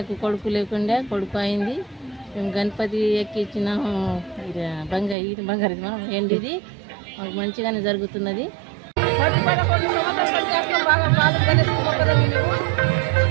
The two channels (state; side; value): drops out; left; at 5.2 s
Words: కొడుకు లేకుండా కొడుకు అయింది. మేము గణపతి ఎక్కించినాము. బంగారు మనం ఎండిది మాకు మంచిగానే జరుగుతున్నది.